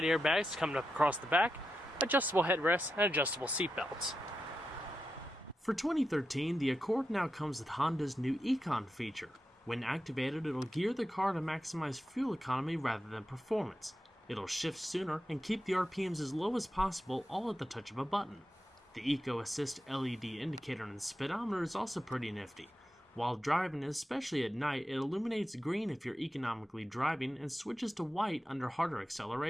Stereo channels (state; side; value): normal; both; correlation 0.89